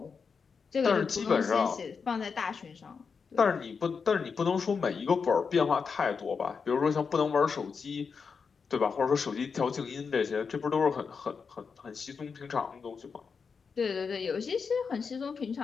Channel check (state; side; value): quieter; right; 5.6 dB